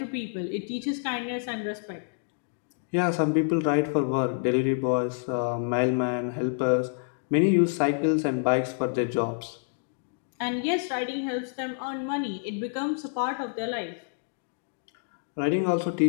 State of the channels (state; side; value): silent; right; digital silence